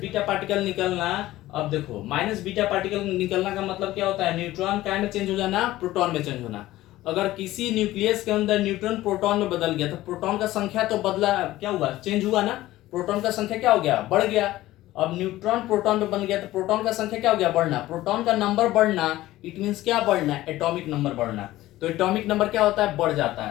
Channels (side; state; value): right; quieter; 16.1 dB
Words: पार्टिकल निकलना, अब देखो माइनस बीटा पार्टिकल निकलना का मतलब क्या होता है? न्यूट्रॉन क्या में चेंज हो जाना? प्रोटॉन में चेंज होना। अगर किसी न्यूक्लियस के अंदर न्यूट्रॉन प्रोटॉन में बदल गया तो प्रोटॉन का संख्या तो बदला, क्या हुआ? चेंज हुआ ना। प्रोटॉन का संख्या क्या हो गया? बढ़ गया। अब न्यूट्रॉन प्रोटॉन में बन गया तो प्रोटॉन का संख्या क्या हो गया? बढ़ना। प्रोटॉन का नंबर बढ़ना, इट मींस क्या बढ़ना? एटॉमिक नंबर बढ़ना। तो एटॉमिक नंबर क्या होता है? बढ़ जाता